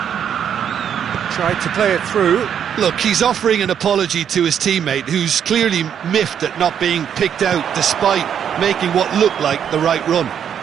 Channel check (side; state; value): left; quieter; 8.6 dB